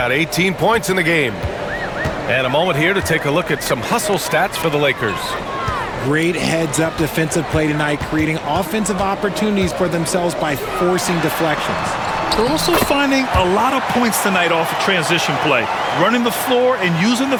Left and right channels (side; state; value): both; identical; correlation 1.00